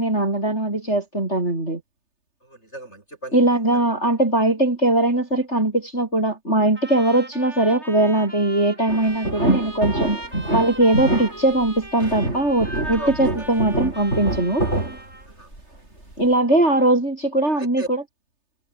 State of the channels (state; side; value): late; right; 3.3 ms